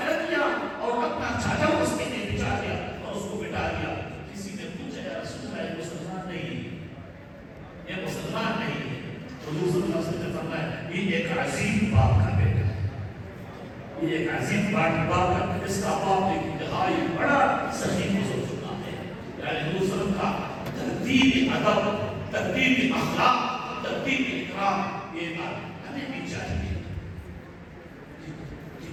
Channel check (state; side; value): identical; both; correlation 1.00